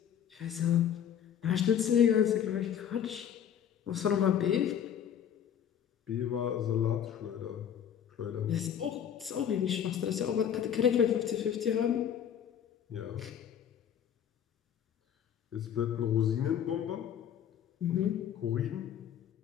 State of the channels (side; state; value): right; quieter; 9.2 dB